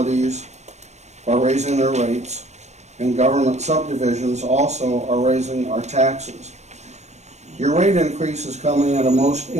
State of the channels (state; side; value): late; left; 0.33 ms